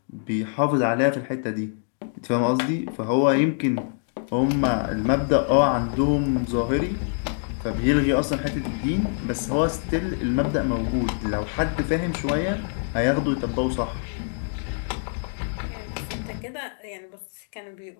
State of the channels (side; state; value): right; silent; digital silence